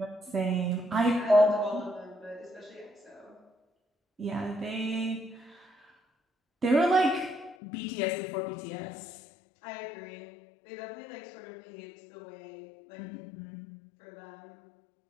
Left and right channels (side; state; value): right; drops out; at 7.6 s